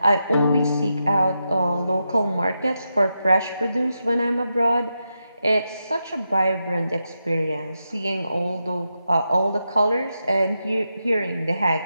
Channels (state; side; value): inverted; both; correlation -0.87